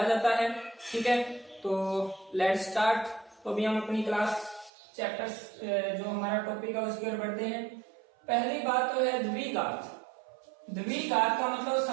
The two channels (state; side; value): drops out; left; at 4.7 s